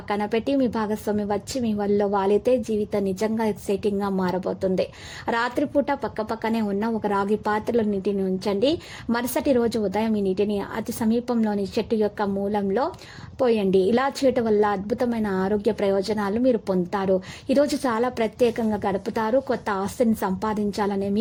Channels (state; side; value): identical; both; correlation 1.00